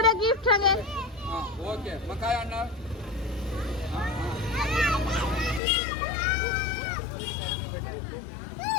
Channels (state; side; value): drops out; right; at 5.6 s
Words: गिफ्ट सांगे. हा ओके. मग काय आणणार?